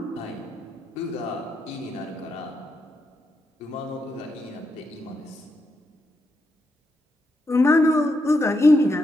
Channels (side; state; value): both; normal; correlation 0.82